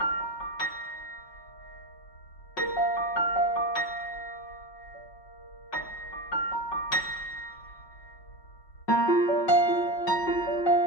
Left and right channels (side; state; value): right; late; 5.4 ms